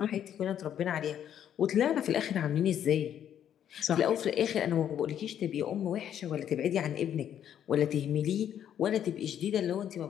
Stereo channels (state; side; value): quieter; right; 9.9 dB